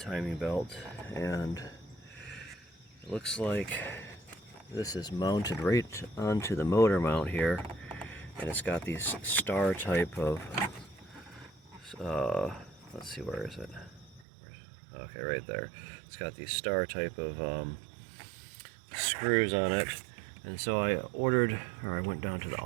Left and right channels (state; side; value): drops out; left; at 14.2 s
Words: belt. And it looks like this is mounted right onto the motor mount here, and it's got these star type of let's see, where is it? Okay, right there. It's got these star type of screws on it. And so I went down to the